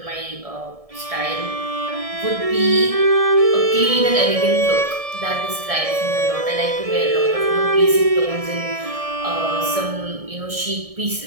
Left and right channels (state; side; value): late; left; 1.7 ms